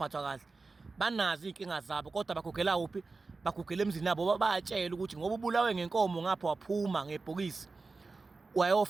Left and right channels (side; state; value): left; quieter; 3.9 dB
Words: kahle, banazi inkinga zabo kodwa bagugela kuphi, bagugela emzini yabo. Bayatshela ukuthi ngoba ubulawe ngenkomo ngapha waphuma ngebhokisi